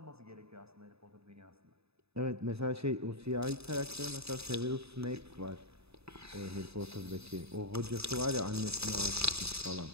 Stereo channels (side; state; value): left; late; 0.79 ms